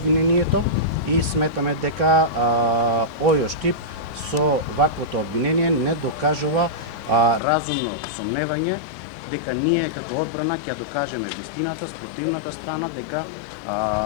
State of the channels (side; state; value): right; drops out; at 7.4 s